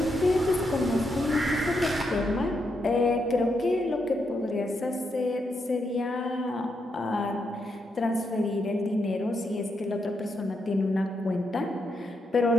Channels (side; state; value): both; normal; correlation 0.81